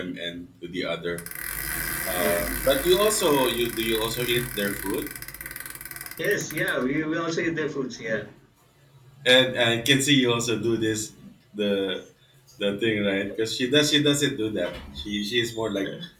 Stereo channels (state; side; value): identical; both; correlation 1.00